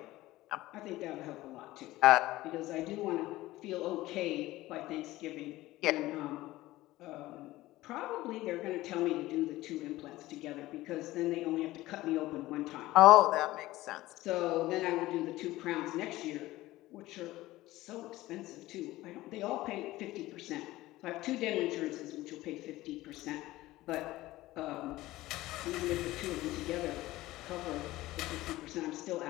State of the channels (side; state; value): right; quieter; 17.3 dB